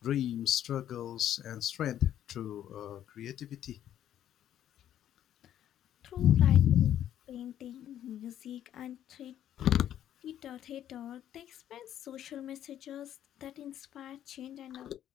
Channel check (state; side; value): quieter; right; 11.0 dB